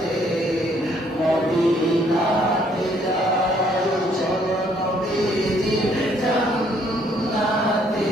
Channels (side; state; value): both; normal; correlation 0.66